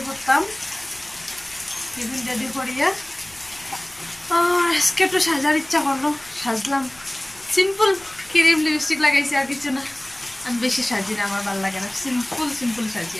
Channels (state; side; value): noise; left; rumble, 26 dB below the sound